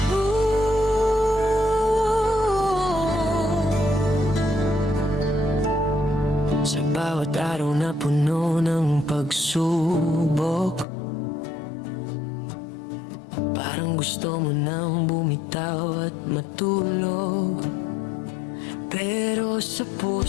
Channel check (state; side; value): drops out; right; at 10.9 s